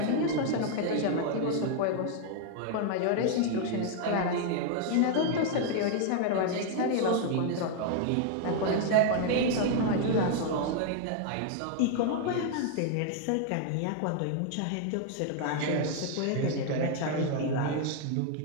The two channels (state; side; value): different; both; correlation 0.00